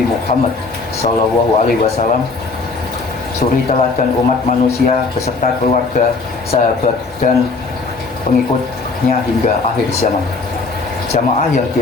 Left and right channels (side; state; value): right; quieter; 4.1 dB